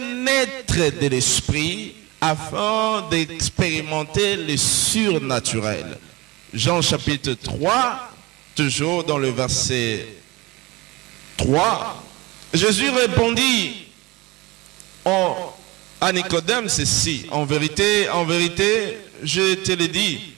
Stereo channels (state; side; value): quieter; left; 22.2 dB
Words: naître de l'esprit afin d'expérimenter le surnaturel. Jean chapitre 3, toujours dans le verset 3, Jésus répondit à Nicodème ceci: en vérité, je te le dis,